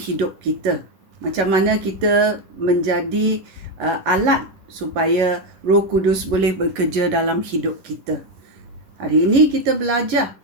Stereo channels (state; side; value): late; left; 11 ms